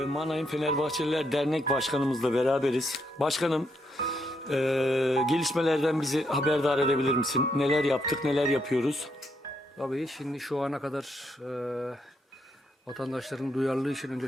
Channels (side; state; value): both; normal; correlation 0.77